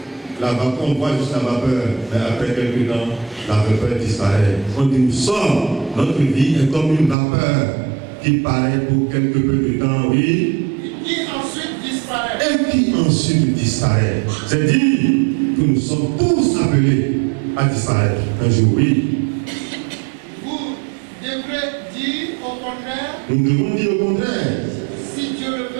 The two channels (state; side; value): drops out; left; at 7.2 s